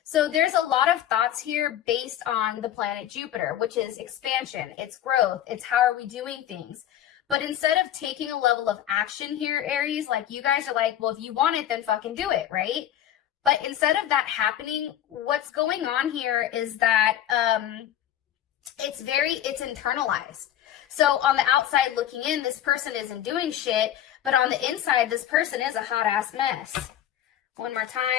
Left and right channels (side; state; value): right; quieter; 11.3 dB